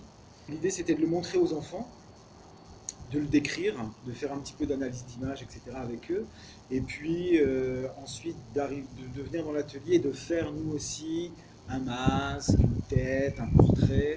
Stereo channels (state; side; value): identical; both; correlation 1.00